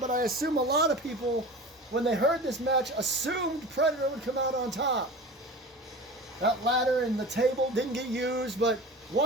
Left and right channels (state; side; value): normal; both; correlation 0.35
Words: I assume a lot of people, when they heard this match, assumed Predator would come out on top. That ladder and the table didn't get used, but